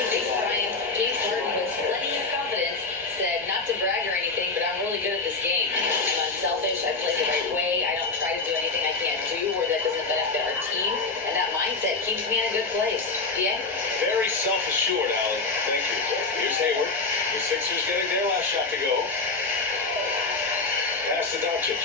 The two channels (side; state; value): right; quieter; 3.9 dB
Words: Thanks, Brian. James Harden with plenty of confidence said not to brag or anything, but I'm really good at this game. I'm unselfish. I play the right way. I don't try to do anything I can't do or that doesn't benefit our team. And that mindset keeps me in a good place. Yeah? Very self-assured, Allie. Thank you. Here's Hayward. The Sixers getting their last shot to go. Pass to Doncic